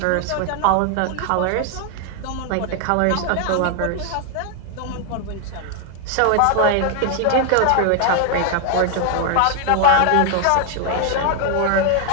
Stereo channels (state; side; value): different; both; correlation 0.00